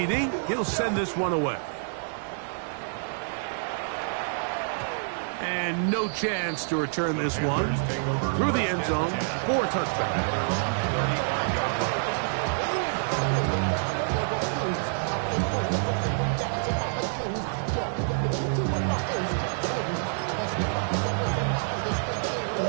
he'll send this one away. And no chance to return this one through the end zone for a touchback.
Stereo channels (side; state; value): left; silent; 60 dB below the other